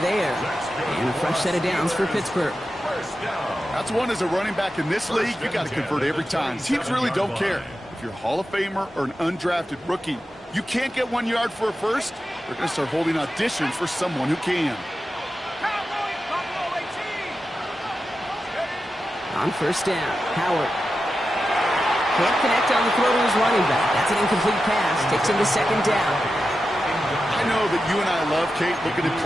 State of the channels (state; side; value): normal; both; correlation 0.91